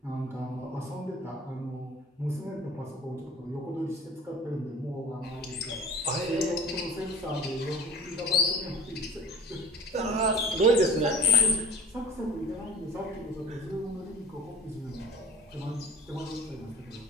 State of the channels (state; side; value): normal; both; correlation 0.43